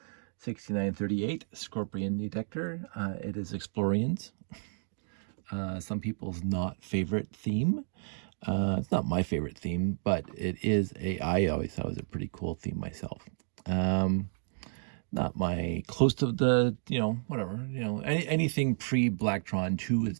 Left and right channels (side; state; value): left; silent; digital silence